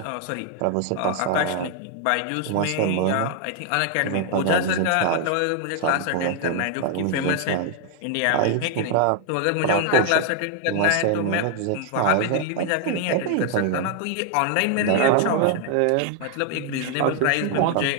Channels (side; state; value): both; different; correlation 0.01